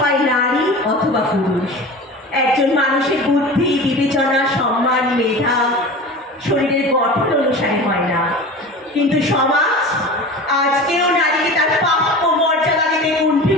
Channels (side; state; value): both; normal; correlation 0.35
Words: নারী অথবা পুরুষ। একজন মানুষের বুদ্ধি, বিবেচনা, সম্মান, মেধা শরীরের গঠন অনুসারে হয় না, কিন্তু সমাজ আজকেও নারীকে তার প্রাপ্য মর্যাদা দিতে